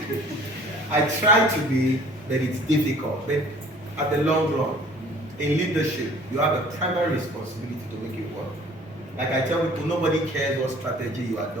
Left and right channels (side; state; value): both; normal; correlation 0.51